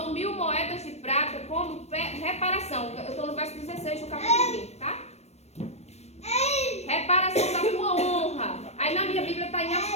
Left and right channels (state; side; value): late; right; 0.31 ms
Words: 1000 moedas de prata como reparação. Eu estou no verso 16 do capítulo 20, tá? Reparação da tua honra. Aí na minha Bíblia está em